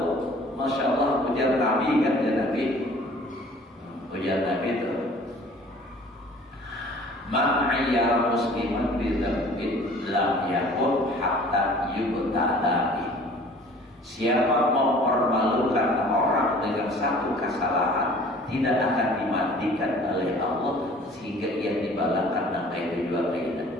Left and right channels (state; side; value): normal; both; correlation 0.49